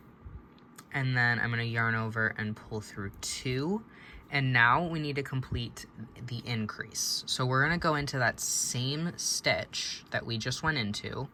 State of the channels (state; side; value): identical; both; correlation 1.00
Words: And then I'm gonna yarn over and pull through 2. And now we need to complete the increase. So we're gonna go into that same stitch that we just went into,